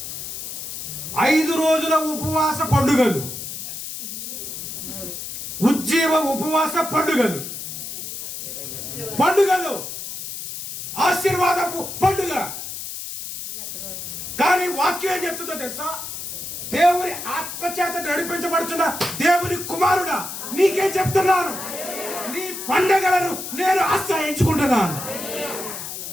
5 రోజుల ఉపవాస పండుగలు, ఉజ్జీవ ఉపవాస పండుగలు, పండుగలు ఆశీర్వాదపు పండుగ. కానీ వాక్యం ఏం చెప్తుందో తెలుసా? దేవుని ఆత్మచేత నడిపించబడుతున్న దేవుని కుమారుడా, నీకేం చెప్తున్నాను, నీ పండుగలను నేను ఆశ్రయించుకుంటున్నాను.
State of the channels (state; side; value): noise; left; hiss, 8 dB below the sound